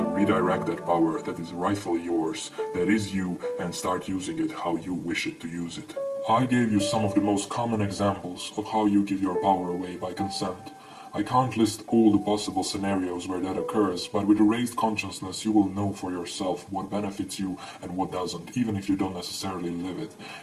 redirect that power that is rightfully yours, that is you, and start using it how you wish it to use it. I gave you some of the most common examples of how you give your power away by consent. I can't list all the possible scenarios where that occurs, but with a raised consciousness you will know for yourself what benefits you and what doesn't, even if you don't necessarily live it.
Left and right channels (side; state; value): both; identical; correlation 1.00